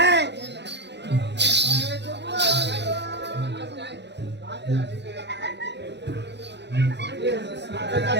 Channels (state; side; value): late; left; 0.50 ms